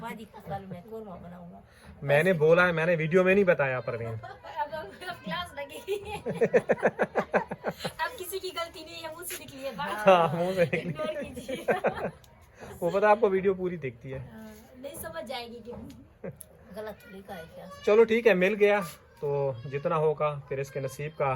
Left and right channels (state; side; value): identical; both; correlation 1.00